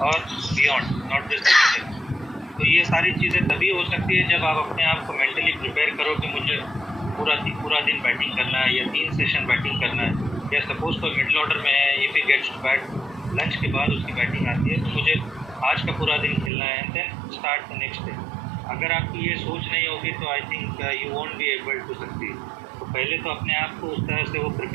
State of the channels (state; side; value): drops out; left; at 16.5 s